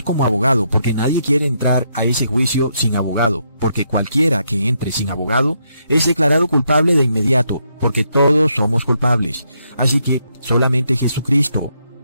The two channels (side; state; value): both; inverted; correlation -0.77